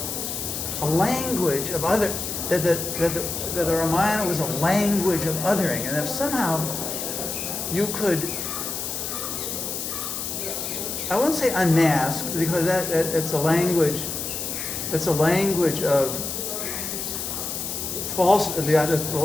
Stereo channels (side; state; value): left; noise; hiss, 4 dB below the sound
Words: a language of other, that the Ramayana was a language of othering, and if somehow you could, I won't say unmask, because that's a language of false, the